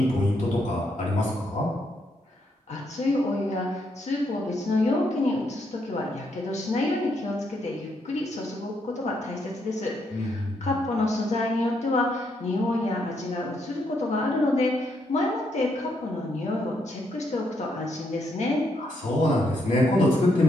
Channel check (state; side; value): normal; both; correlation 0.76